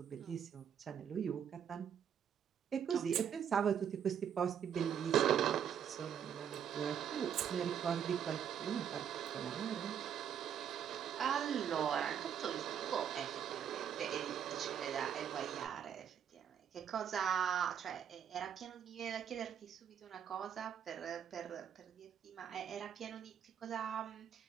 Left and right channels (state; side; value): quieter; left; 8.6 dB